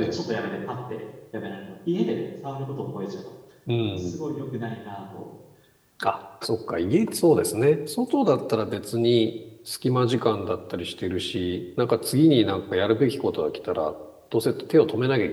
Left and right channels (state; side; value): identical; both; correlation 1.00